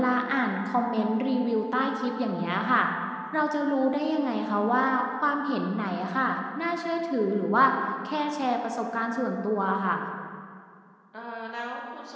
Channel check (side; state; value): both; identical; correlation 1.00